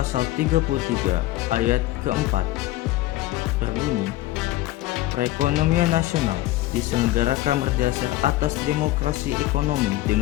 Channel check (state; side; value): quieter; right; 16.2 dB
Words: 33 ayat keempat berbunyi, perekonomian nasional diselenggarakan berdasar atas demokrasi ekonomi